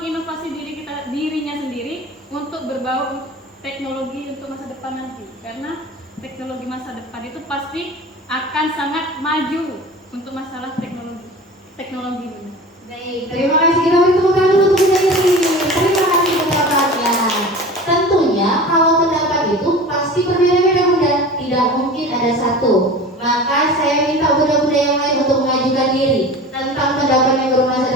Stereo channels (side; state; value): both; normal; correlation 0.36